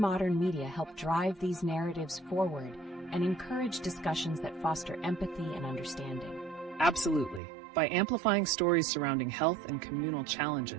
media help drive these narratives forward and encourage discussions that foster empathy and understanding? Absolutely. By amplifying stories surrounding health and communal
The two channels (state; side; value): drops out; left; at 7.4 s